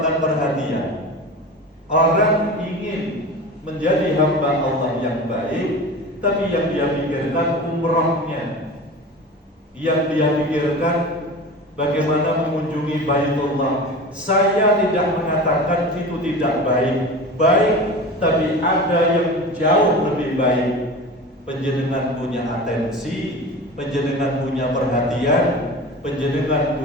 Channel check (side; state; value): both; normal; correlation 0.33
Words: perhatian. Orang ingin menjadi hamba Allah yang baik, tapi yang dia pikirkan umrohnya, yang dia pikirkan bagaimana mengunjungi Baitullah. Saya tidak mengatakan itu tidak baik, tapi ada yang jauh lebih baik. Panjenengan punya atensi, panjenengan punya perhatian, panjenengan